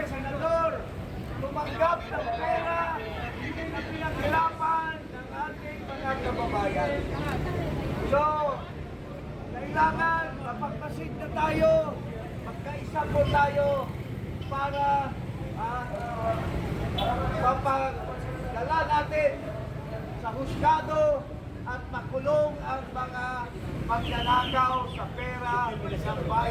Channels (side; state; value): both; identical; correlation 1.00